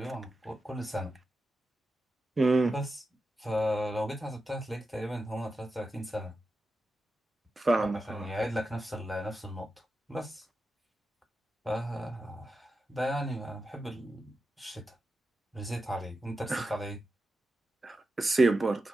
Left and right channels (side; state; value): both; normal; correlation 0.90